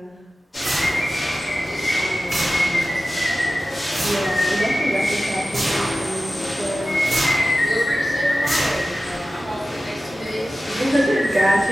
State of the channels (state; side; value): normal; both; correlation 0.95